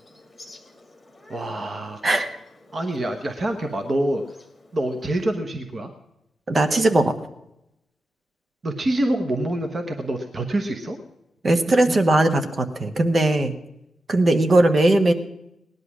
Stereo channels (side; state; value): both; normal; correlation 0.90